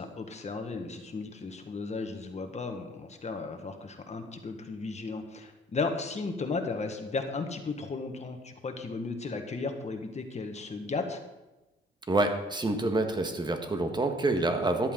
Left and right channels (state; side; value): normal; both; correlation 0.58